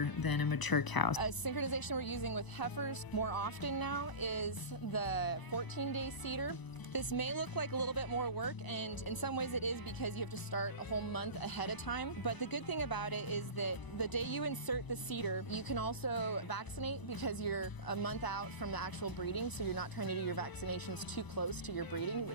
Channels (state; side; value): late; right; 1.0 ms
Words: than a mature cow. A synchronization we're using with heifers more often now is the 14-day Cedar. This may look like a little bit more work, and in some ways it is because you have to start a whole month ahead of time. But the good thing about it is that the day you insert the Cedar, you can also vaccinate because you're a month out from the actual breeding, so you're not trying to do your vaccinations too close to your breeding,